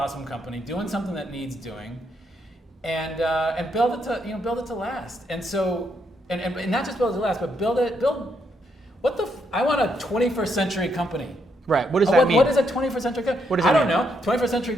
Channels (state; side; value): normal; both; correlation 0.77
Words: company doing something that needs doing, and build it to last. And so and not just build it to last, but build I want a 21st century company. Right. What does that mean? What is a 21st century company? What does that mean? I don't know. 21st century